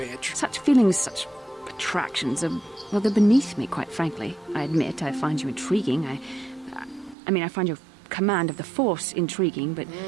Such feelings, such attractions are, well, they're beneath me, quite frankly. I admit I find you intriguing. I find your command of the Force intriguing, but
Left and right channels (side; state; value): left; drops out; at 7.2 s